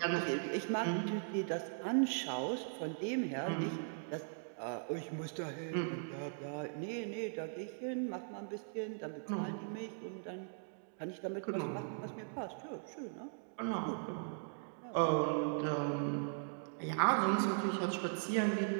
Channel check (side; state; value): left; silent; digital silence